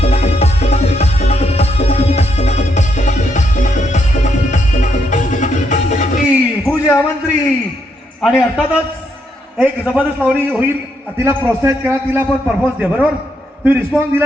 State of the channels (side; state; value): both; normal; correlation 0.77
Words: पूजा मंत्री आणि अर्थातच एक जबरदस्त लावणी होईल. तिला प्रोत्साहित करा. तिला पण परफॉर्मन्स द्या. बरोबर? तुम्ही रिस्पॉन्स